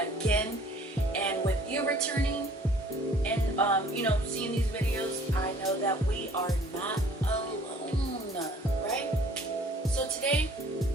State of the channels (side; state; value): both; normal; correlation 0.54